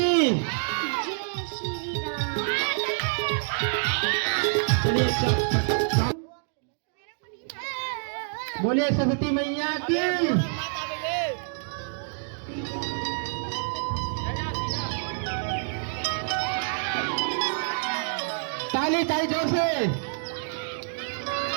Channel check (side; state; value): left; silent; digital silence